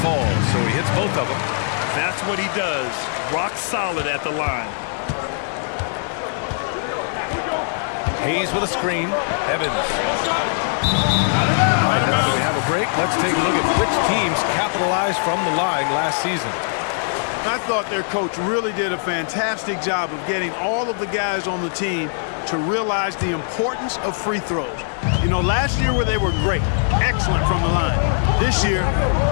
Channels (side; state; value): right; silent; digital silence